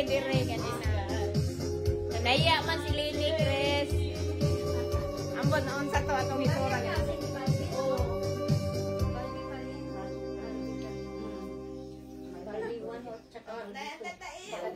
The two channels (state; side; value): identical; both; correlation 1.00